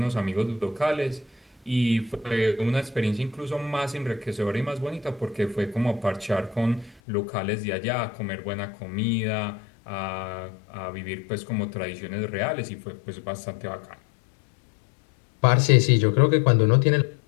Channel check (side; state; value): right; drops out; at 7.0 s